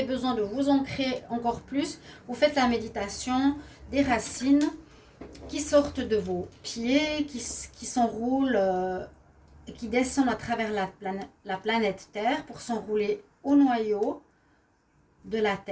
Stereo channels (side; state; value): both; identical; correlation 1.00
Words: besoin de vous ancrer encore plus, vous faites la méditation des racines qui sortent de vos pieds, qui s'enroulent, qui descendent à travers la planète Terre pour s'enrouler au noyau de la